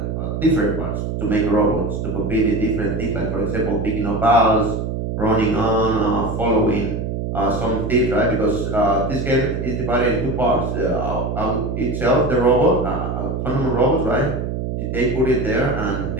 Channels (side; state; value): right; noise; hum, 3 dB below the sound